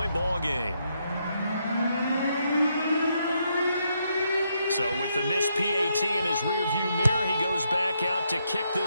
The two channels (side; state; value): both; inverted; correlation -0.78